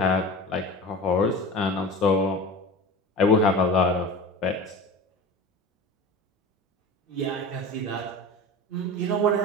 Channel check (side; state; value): both; normal; correlation 0.33